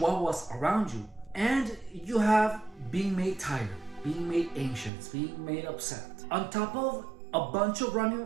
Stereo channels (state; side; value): drops out; left; at 4.9 s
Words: around you, and you have being made tired, being made anxious, being made upset, on top of a bunch of random